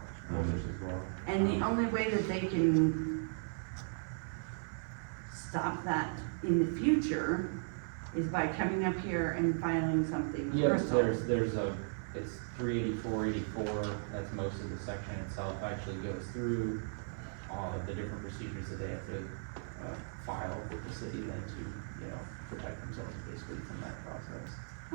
holders as well. And the only way that they can stop that in the future is by coming up here and filing something with Yep, Crystal. there's it's 384, that's most of the section itself, actually goes through all of the different procedures that they have to, file with the city then to, you know, protect themselves basically from that process.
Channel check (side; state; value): left; silent; 53 dB below the other